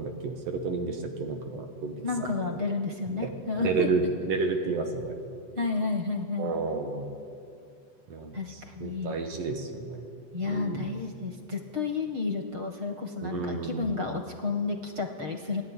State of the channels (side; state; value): left; late; 8.0 ms